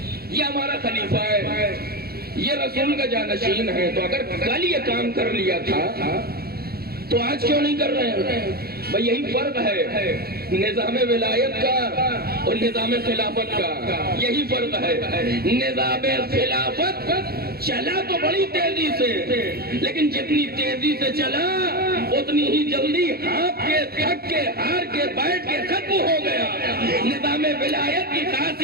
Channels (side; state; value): left; late; 0.45 ms